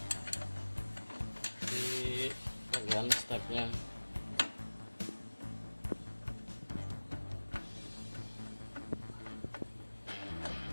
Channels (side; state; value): both; inverted; correlation -1.00